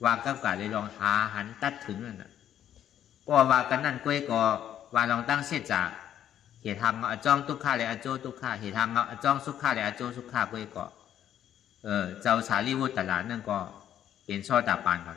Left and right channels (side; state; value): right; quieter; 10.6 dB